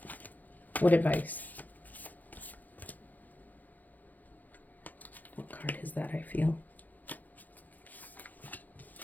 what advice? What card is that, I feel?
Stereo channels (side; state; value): right; late; 0.082 ms